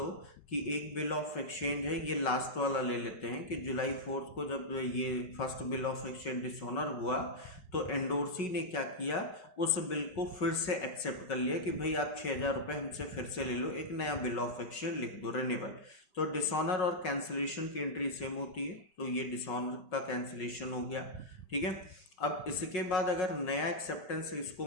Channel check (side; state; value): right; late; 5.4 ms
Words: कि एक बिल ऑफ एक्सचेंज है, ये लास्ट वाला ले लेते हैं कि जुलाई 4 को जब ये first bill of exchange dishonour हुआ तो एंडोर्सी ने क्या किया, उस बिल को फिर से एक्सेप्ट कर लिया कि भाई आप 6,000 रुपये हमसे फिर से ले लो, एक नया बिल ऑफ एक्सचेंज लिख दो, रिन्यूअल। तो डिसऑनर और कैंसिलेशन की एंट्री सेम होती है, तो ये डिसऑनर का कैंसिलेशन हो गया, ठीक है। अब इसके बाद अगर नया एक्सेप्टेंस इसको